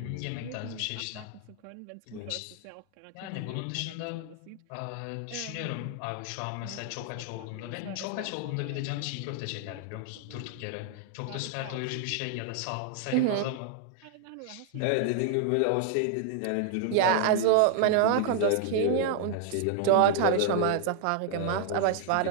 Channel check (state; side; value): different; both; correlation 0.00